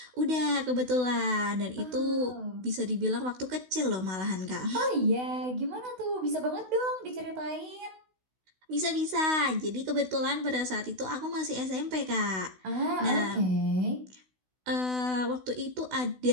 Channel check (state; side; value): late; left; 16 ms